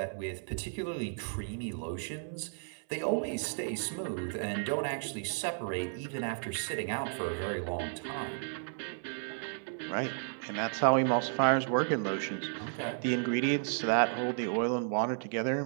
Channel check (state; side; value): silent; left; 56 dB below the other